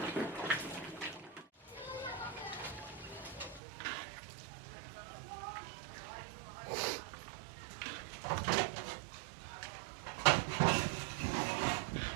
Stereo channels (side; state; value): left; drops out; at 3.6 s